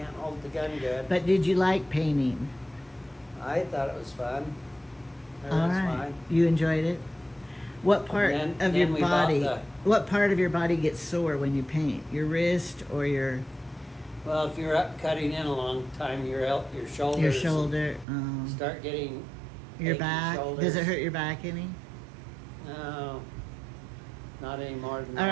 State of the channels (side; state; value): left; drops out; at 18.1 s